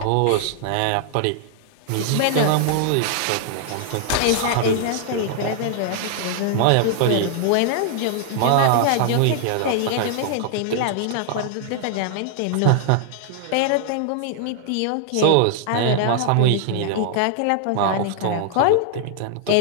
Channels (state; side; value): different; both; correlation 0.00